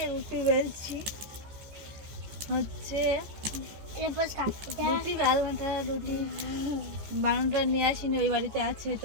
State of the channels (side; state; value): left; late; 14 ms